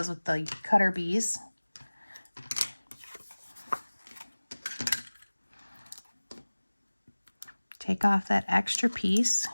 with the cutter bees. Take off that extra piece.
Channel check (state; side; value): inverted; both; correlation -1.00